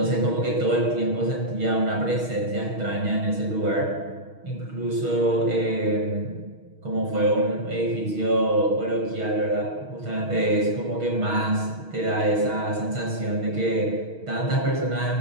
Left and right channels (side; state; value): left; late; 6.4 ms